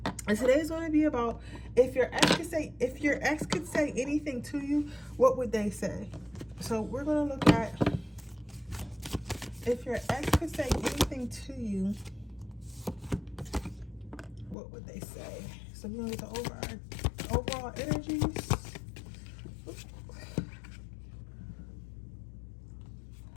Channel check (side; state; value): right; drops out; at 14.6 s